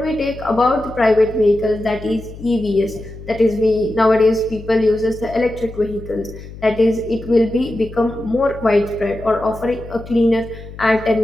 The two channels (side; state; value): left; noise; hum, 15 dB below the sound